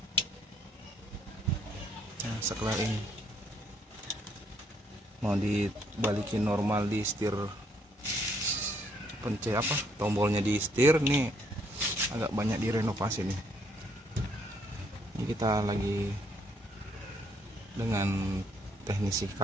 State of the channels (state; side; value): normal; both; correlation 0.69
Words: Nah, sekelar ini mau dibalikin normal di setir, pencet apa tombolnya di setir nih agak banyak direnovasi nih. Ini kita lagi dengan teknisi